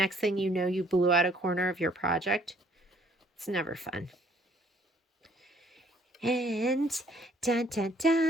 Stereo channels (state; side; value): normal; both; correlation 0.62